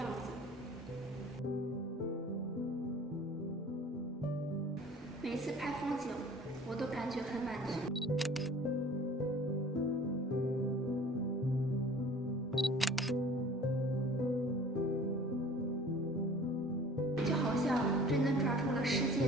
子。每次拍风景，我都感觉很满足。就好像真的抓住了世界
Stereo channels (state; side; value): normal; both; correlation 0.47